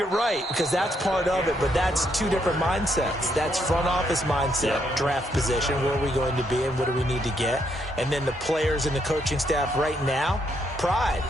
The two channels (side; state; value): both; normal; correlation 0.75